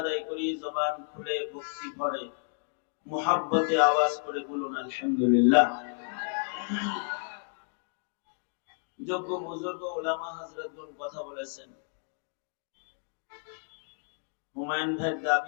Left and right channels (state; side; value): silent; right; 57 dB below the other